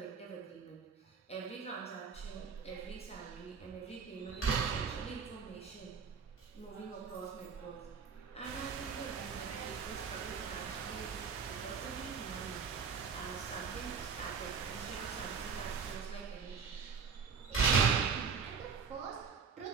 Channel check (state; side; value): quieter; left; 5.9 dB